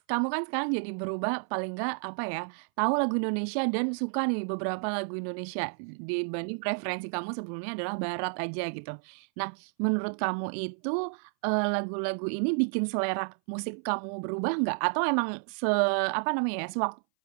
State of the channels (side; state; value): left; silent; 58 dB below the other